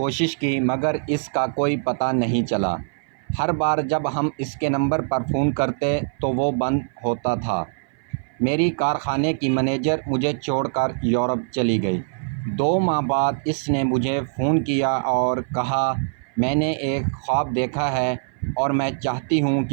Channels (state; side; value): silent; left; 58 dB below the other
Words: کی مگر اس کا کوئی پتہ نہیں چلا۔ ہر بار جب ہم اس کے نمبر پر فون کرتے تو وہ بند ہوتا تھا۔ میری کارخانے کی مینیجر مجھے چھوڑ کر یورپ چلی گئی۔ 2 ماہ بعد اس نے مجھے فون کیا اور کہا، میں نے ایک خواب دیکھا ہے اور میں چاہتی ہوں